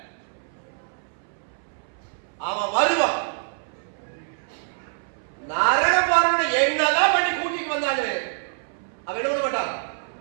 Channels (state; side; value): silent; left; 61 dB below the other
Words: அவன் வருவான். நரக பாருங்க என்னதான் பண்ணி கூட்டிட்டு வந்தாரு, அவன் என்ன பண்ண மாட்டான்,